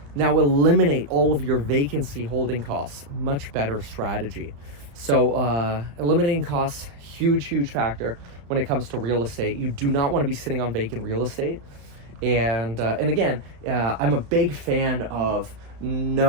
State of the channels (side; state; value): left; late; 35 ms